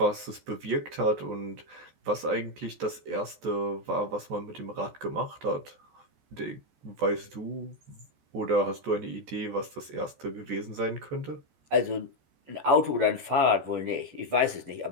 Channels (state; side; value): late; left; 14 ms